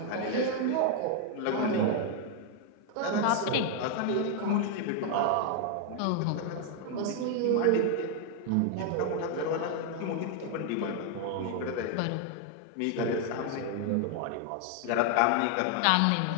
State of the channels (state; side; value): different; both; correlation 0.00